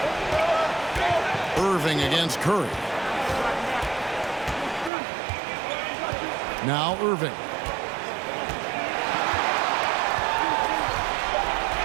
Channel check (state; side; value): drops out; left; at 4.9 s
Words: Against Curry. Now Irving.